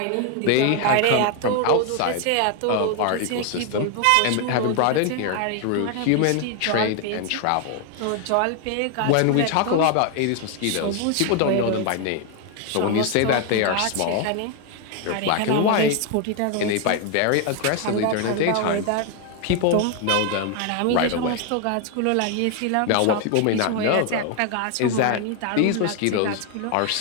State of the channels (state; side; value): different; both; correlation 0.00